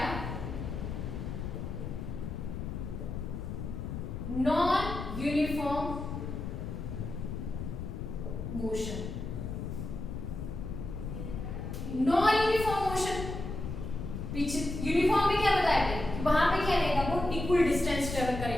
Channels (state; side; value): noise; left; rumble, 5 dB below the sound